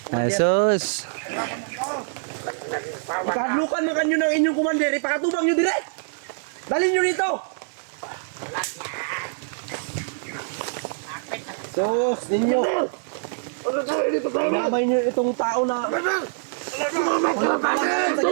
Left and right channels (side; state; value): left; silent; digital silence